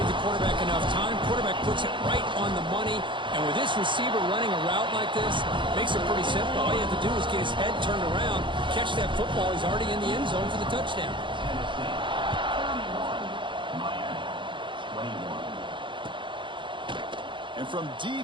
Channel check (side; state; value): left; late; 0.23 ms